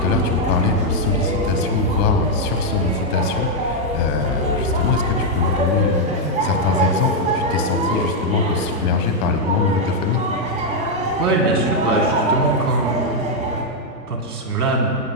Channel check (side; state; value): both; normal; correlation -0.01